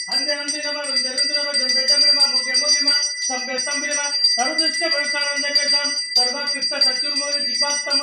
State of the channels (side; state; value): both; identical; correlation 1.00